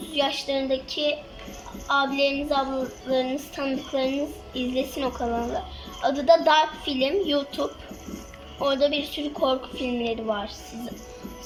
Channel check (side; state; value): both; identical; correlation 1.00